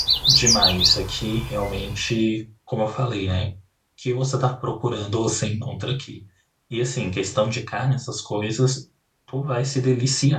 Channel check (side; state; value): both; identical; correlation 1.00